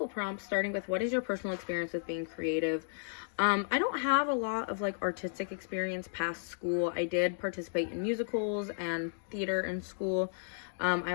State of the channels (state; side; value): silent; right; digital silence